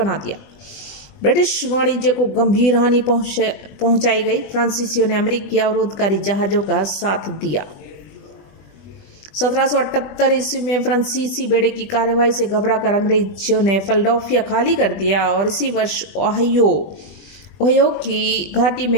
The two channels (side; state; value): right; late; 20 ms